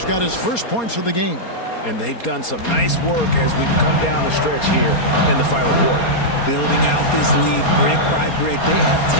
got his first points of the game. And they've done some nice work as we've come down the stretch here in the final quarter. Building out this lead brick by brick. They have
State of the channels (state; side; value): late; right; 4.3 ms